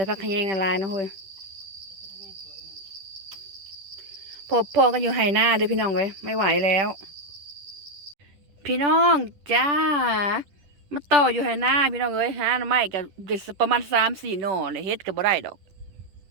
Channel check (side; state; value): left; late; 10 ms